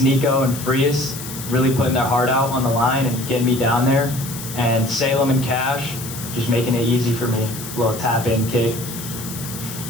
Nico and Frias, really putting their heart out on the line and getting me down there, and Salem and Cash just making it easy for me. A little tap-in kick. And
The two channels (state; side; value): noise; left; hiss, 10 dB below the sound